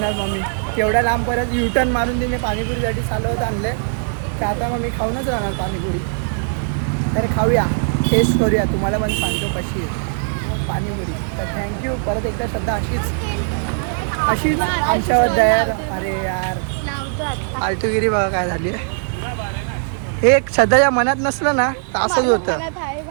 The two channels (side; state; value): left; silent; digital silence